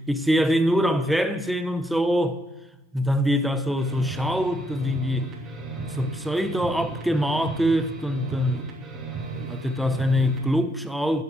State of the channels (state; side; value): normal; both; correlation 0.76